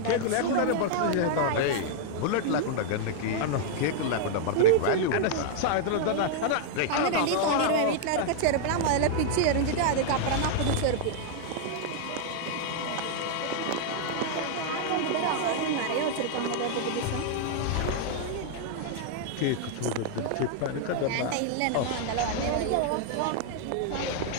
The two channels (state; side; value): different; both; correlation -0.01